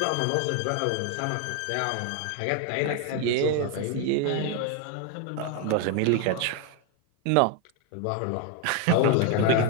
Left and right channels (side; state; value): both; different; correlation 0.01